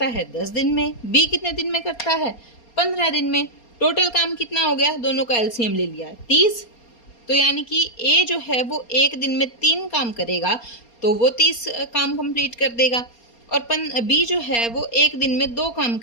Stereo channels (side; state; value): right; late; 4.3 ms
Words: है? 10 दिन में। बी कितने दिन में करता है? 15 दिन में। टोटल काम कितना हो गया? दोनों का एलसीएम ले लिया, 30। तो यानी कि ए जो है वो एक दिन में 3 काम करेगा तो वो 30 काम कंप्लीट कर देगा, और बी जो है वो एक दिन में 2 काम